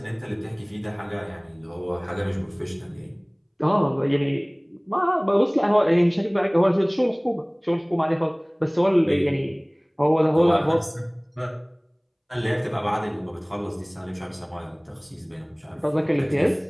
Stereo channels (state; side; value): identical; both; correlation 1.00